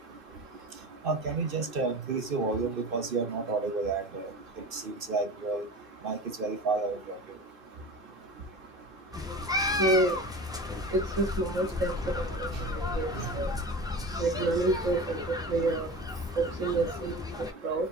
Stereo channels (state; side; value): normal; both; correlation 0.33